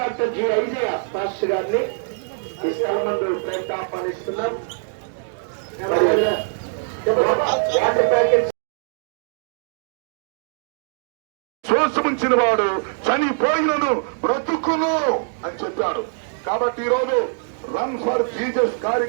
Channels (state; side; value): silent; left; digital silence